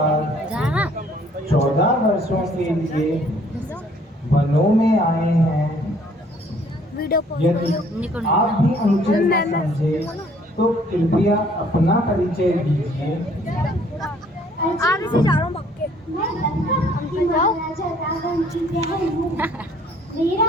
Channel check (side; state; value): both; normal; correlation 0.60